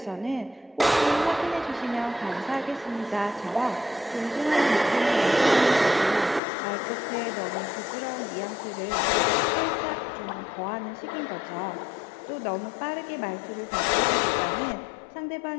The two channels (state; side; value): drops out; right; at 6.4 s